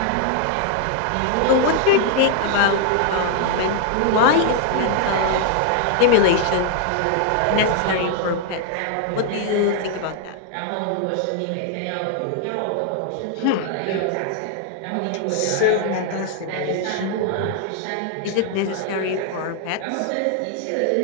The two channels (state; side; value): different; both; correlation 0.00